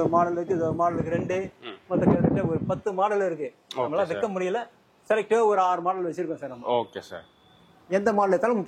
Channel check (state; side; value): identical; both; correlation 1.00